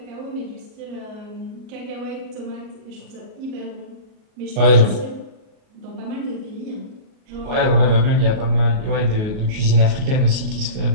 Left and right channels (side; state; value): left; late; 38 ms